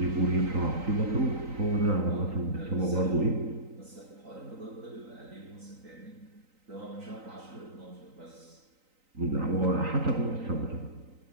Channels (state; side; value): late; left; 3.9 ms